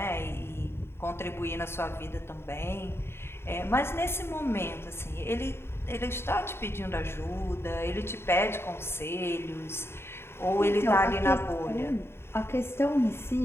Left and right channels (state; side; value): late; right; 0.12 ms